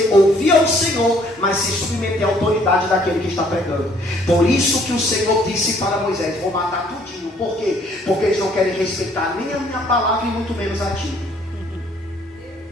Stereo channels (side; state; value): both; normal; correlation 0.62